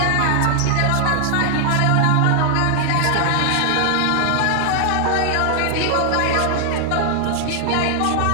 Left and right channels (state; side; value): different; both; correlation 0.00